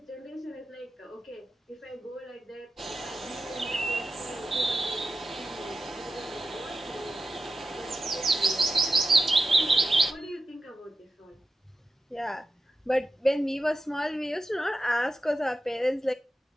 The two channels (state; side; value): normal; both; correlation 0.92